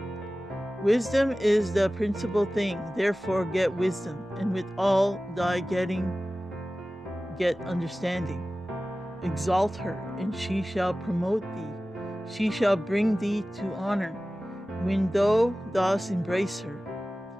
Wisdom is the principal thing, therefore get wisdom, and with all thy getting get understanding. Exalt her, and she shall promote thee. She shall bring thee to honor, when thou dost embrace her.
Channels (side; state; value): both; normal; correlation 0.96